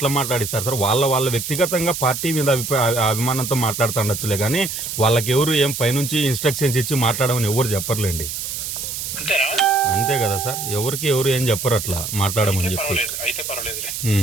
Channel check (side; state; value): right; noise; hiss, 5 dB below the sound